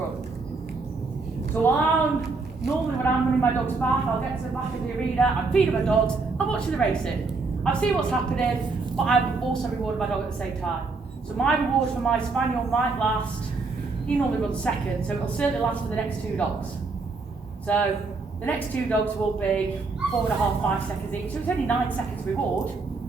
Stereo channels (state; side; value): quieter; left; 4.0 dB